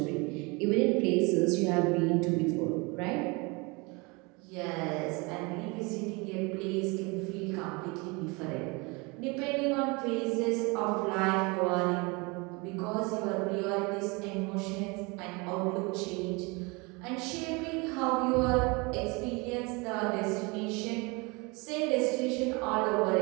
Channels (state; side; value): quieter; left; 27.6 dB